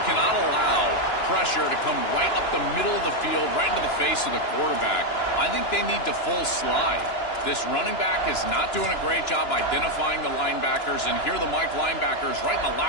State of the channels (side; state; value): right; late; 2.9 ms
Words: cannot allow pressure to come right up the middle of the field, right into the face of the quarterback. I think they need to full slide. This running back is not doing a great job identifying the linebackers, and here the Mike linebackers right in the